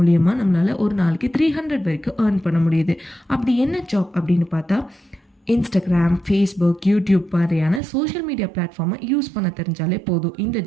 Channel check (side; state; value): left; drops out; at 7.8 s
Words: நம்மளால் ஒரு நாளைக்கு 300 வரைக்கும் ஏர்ன் பண்ண முடியுது. அப்படி என்ன ஜாப் அப்படின்னு பார்த்தா, இன்ஸ்டாகிராம், ஃபேஸ்புக், யூடியூப் மாதிரியான சோஷியல் மீடியா பிளாட்ஃபார்மை யூஸ் பண்ண தெரிஞ்சாலே போதும். இந்த